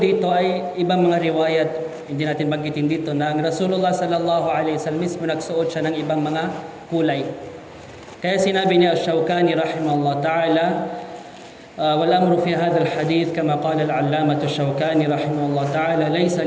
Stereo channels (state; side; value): identical; both; correlation 1.00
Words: dito ay ibang mga riwayat, hindi natin banggitin dito na ang Rasulullah sallallahu alaihi wasallam mismo nagsuot siya ng ibang mga kulay. Kaya sinabi niya Ash-Shawkani rahimahullah ta'ala, wal amru fi hadha al-hadith kama qala al-allamah Ash-Shawkani rahimahullah ta'ala laysa